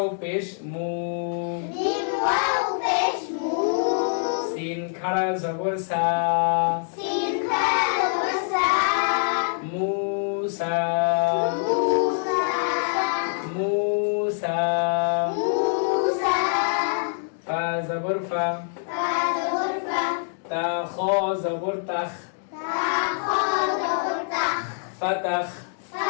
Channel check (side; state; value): right; silent; digital silence